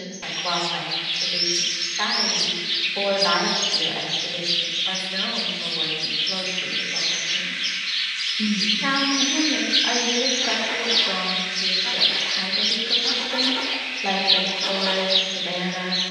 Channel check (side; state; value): both; identical; correlation 1.00